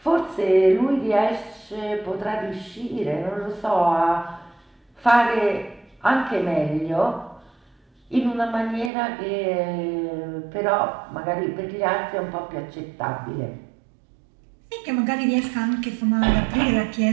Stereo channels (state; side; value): drops out; left; at 8.9 s